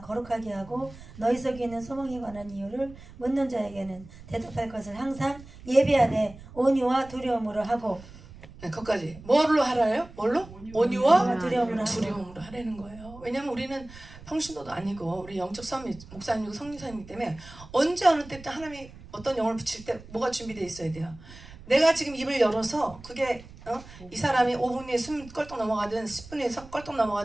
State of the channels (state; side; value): noise; right; rumble, 18 dB below the sound